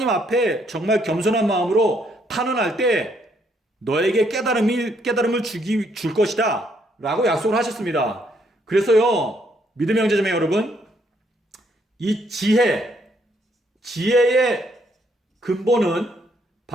앞에 정말 겸손한 마음으로 탄원할 때 너에게 깨달음을 줄 것이다 라고 약속을 하셨습니다. 그래서요, 믿음의 형제자매 여러분, 이 지혜의 근본은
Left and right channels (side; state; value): both; normal; correlation 0.71